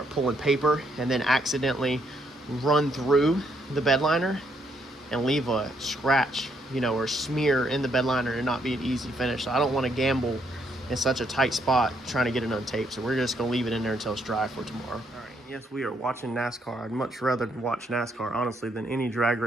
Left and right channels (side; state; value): both; normal; correlation 0.73